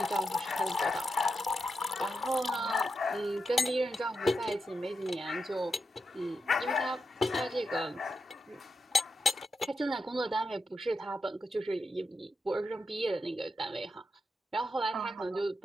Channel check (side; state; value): both; normal; correlation 0.86